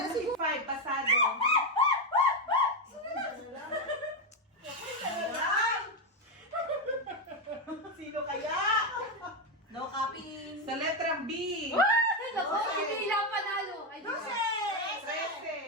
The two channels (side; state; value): both; normal; correlation 0.08